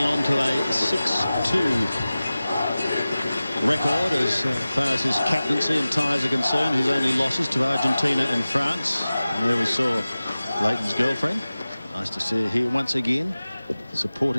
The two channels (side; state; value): both; inverted; correlation -0.96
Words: on to a 6-2 record as far as his captaincy and ties are concerned. His only losses to Argentina and France. And there we saw Leighton's girlfriend Nice to see her here once again,